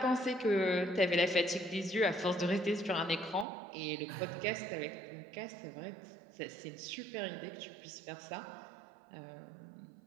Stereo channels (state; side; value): drops out; left; at 3.5 s